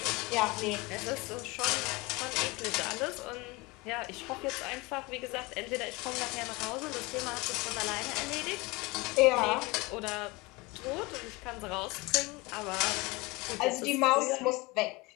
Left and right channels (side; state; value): right; quieter; 23.5 dB